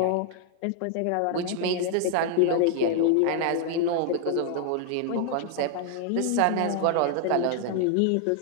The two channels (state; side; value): different; both; correlation 0.00